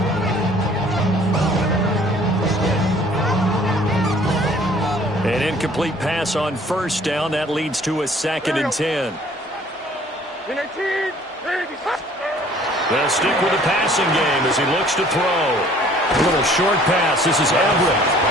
An incomplete pass on 1st down. That leads to a 2nd and 10. They'll stick with the passing game as he looks to throw. A little short pass. This is Everett.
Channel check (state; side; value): normal; both; correlation 0.55